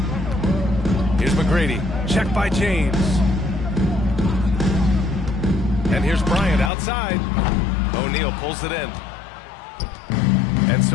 Here's McGrady. Checked by James. And here's Bryant outside. O'Neal pulls it in. And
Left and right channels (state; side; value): drops out; right; at 6.7 s